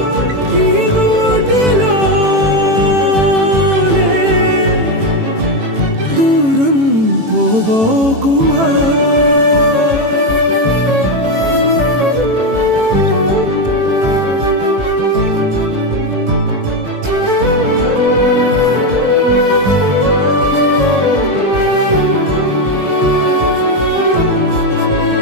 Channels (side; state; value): left; late; 18 ms